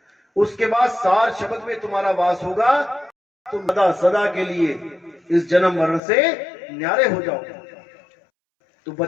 उसके बाद सार शब्द में तुम्हारा वास होगा, तुम सदा सदा के लिए इस जन्म मरण से न्यारे हो जाओगे। तो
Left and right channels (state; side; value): drops out; right; at 6.0 s